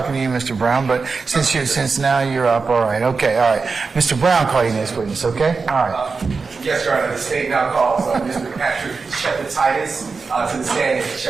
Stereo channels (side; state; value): left; quieter; 4.6 dB